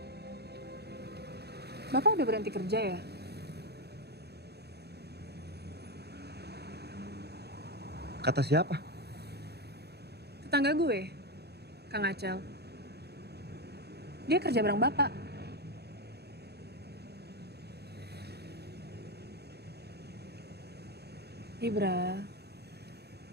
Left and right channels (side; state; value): left; late; 0.48 ms